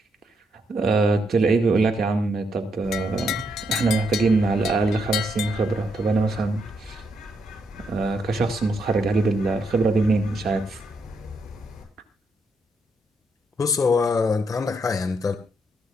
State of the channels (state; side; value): normal; both; correlation 0.78